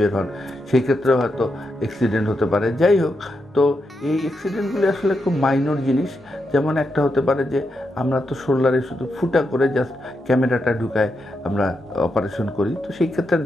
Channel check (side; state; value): both; normal; correlation 0.84